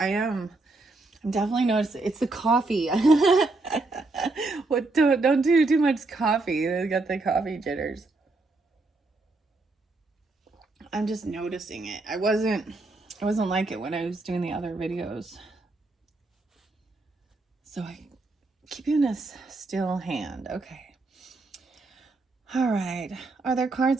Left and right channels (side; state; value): left; quieter; 3.3 dB